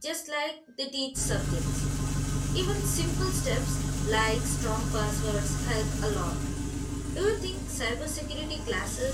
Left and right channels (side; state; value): both; identical; correlation 1.00